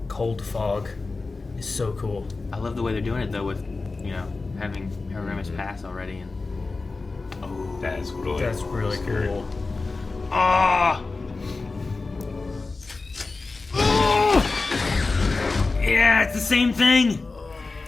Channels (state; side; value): quieter; right; 3.7 dB